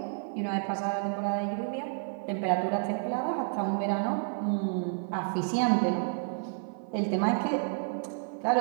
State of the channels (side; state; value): left; silent; 58 dB below the other